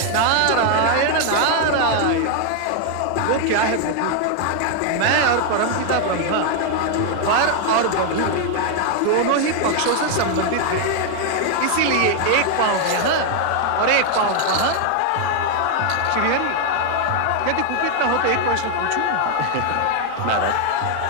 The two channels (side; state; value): both; different; correlation 0.00